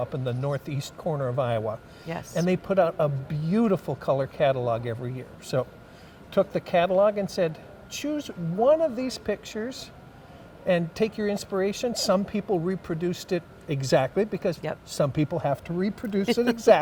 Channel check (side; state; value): both; identical; correlation 1.00